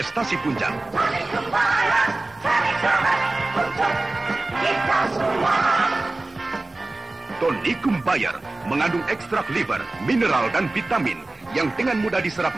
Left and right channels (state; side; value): quieter; left; 3.0 dB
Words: puncak. Tonikum Bayar, cari sahabat untuk kita semua. Tonikum Bayar mengandung ekstrak liver, mineral dan vitamin yang dengan mudah diserap